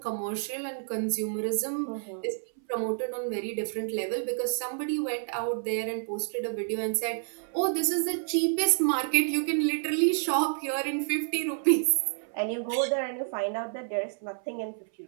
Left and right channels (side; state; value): left; silent; 58 dB below the other